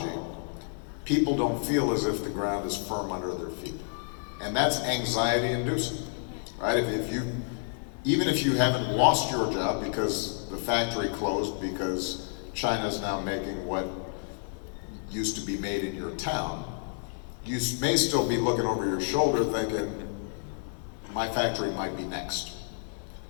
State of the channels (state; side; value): silent; right; 58 dB below the other